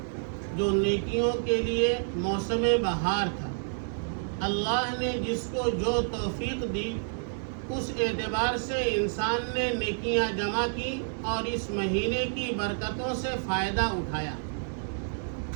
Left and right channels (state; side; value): silent; left; digital silence